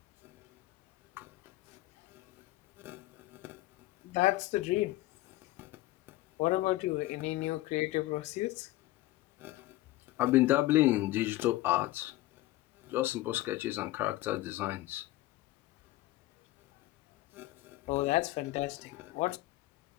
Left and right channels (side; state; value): right; quieter; 17.3 dB